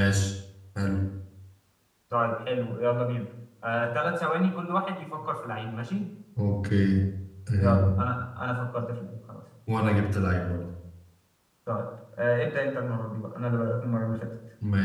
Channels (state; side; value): identical; both; correlation 1.00